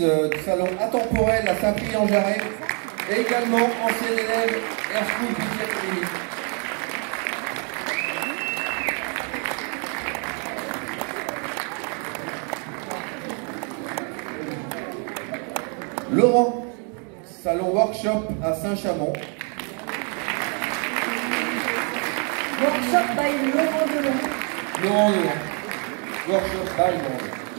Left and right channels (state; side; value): quieter; left; 38.7 dB